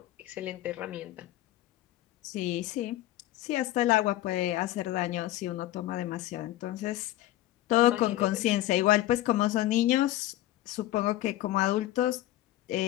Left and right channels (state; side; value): quieter; right; 14.8 dB